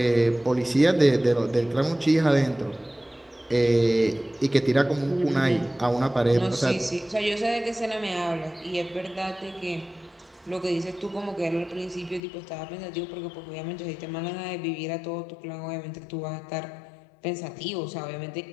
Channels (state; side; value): drops out; right; at 12.2 s